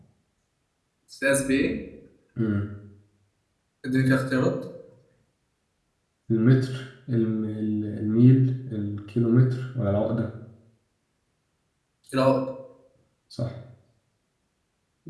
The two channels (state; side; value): identical; both; correlation 1.00